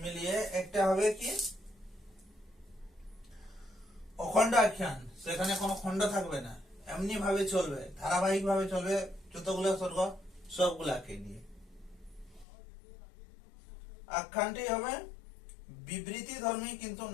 মিলিয়ে একটা হবে কি অখণ্ড আখ্যান। সেখানে কোনো খণ্ড থাকবে না, এমনি ভাবে চলবে, ধারাবাহিক ভাবে চলবে, যতগুলো স্বর্গ সবগুলাকে নিয়ে। আখ্যানটি হবে বিবৃতি ধর্মী কিন্তু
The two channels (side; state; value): right; drops out; at 12.5 s